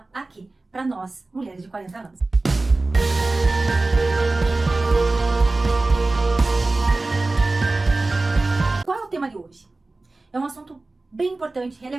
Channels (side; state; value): left; quieter; 3.2 dB